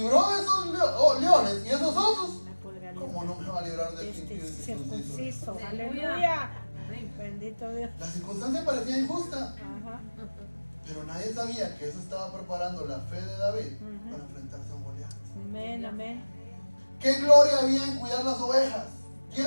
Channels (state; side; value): inverted; both; correlation -1.00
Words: de esos leones y esos osos, Me podrá ¿cómo no me va a librar de este este impío y circunciso? circunciso. Aleluya. Aleluya. Amén. Bendito Dios. La circunstancia parecía injusta, Ajá. pero nadie sabía que eso estaba preparando la fe de David Ujú. para enfrentarse a un Goliat. Amén, amén. ¿Qué gloria había en cuidar las ovejas?